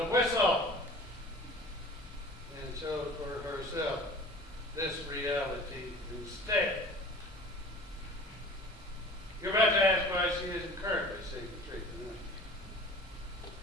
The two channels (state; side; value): normal; both; correlation 0.43